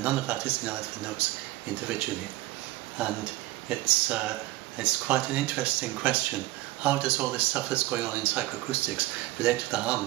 none of that is in either of the notes individually. And it's quite an interesting question. How does all this stuff that's going on in psychoacoustics relate to the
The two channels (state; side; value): quieter; left; 18.0 dB